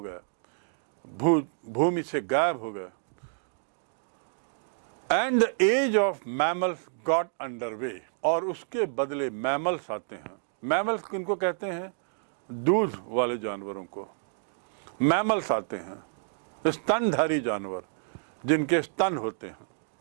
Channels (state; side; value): silent; left; digital silence